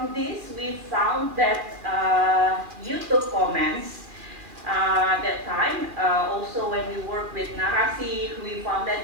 this, we found that YouTube comments that time, also when we work with Narasi, we found that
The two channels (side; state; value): left; late; 2.4 ms